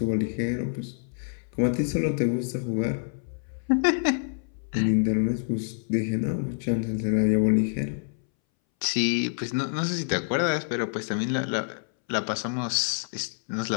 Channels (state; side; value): silent; right; 60 dB below the other